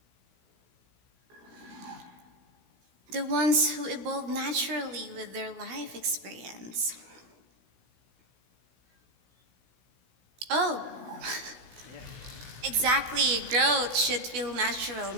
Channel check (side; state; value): left; late; 16 ms